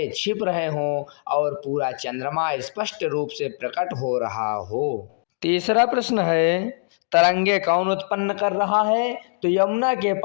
छिप रहे हों और पूरा चंद्रमा स्पष्ट रूप से प्रकट हो रहा हो। तीसरा प्रश्न है, तरंगे कौन उत्पन्न कर रहा है। तो यमुना के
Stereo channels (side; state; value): right; silent; digital silence